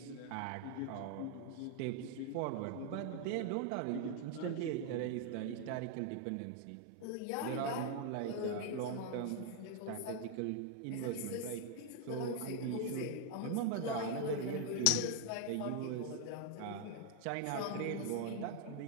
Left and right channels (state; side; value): different; both; correlation 0.00